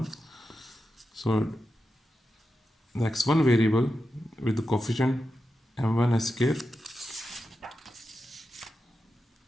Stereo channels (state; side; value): normal; both; correlation 0.90